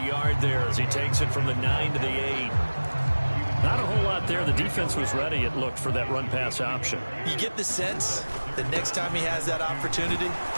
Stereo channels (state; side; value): inverted; both; correlation -1.00